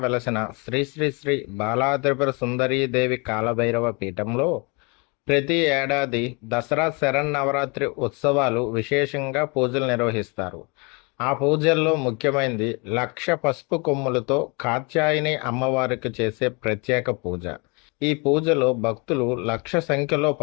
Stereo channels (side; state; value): right; quieter; 30.7 dB